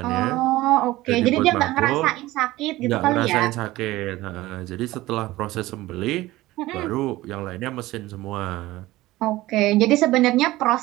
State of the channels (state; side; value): quieter; left; 17.8 dB